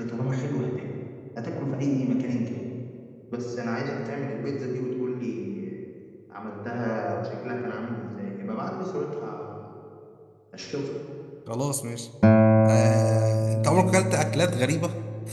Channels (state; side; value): identical; both; correlation 1.00